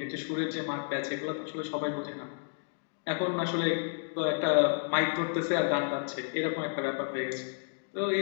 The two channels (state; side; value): silent; right; 57 dB below the other